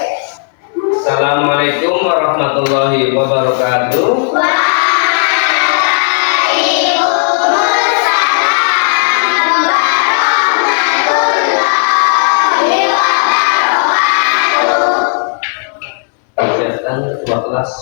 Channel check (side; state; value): right; silent; digital silence